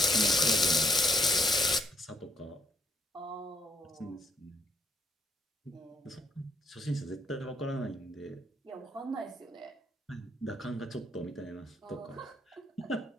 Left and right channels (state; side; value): normal; both; correlation 0.69